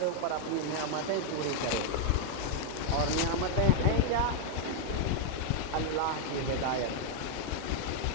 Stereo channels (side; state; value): both; different; correlation 0.00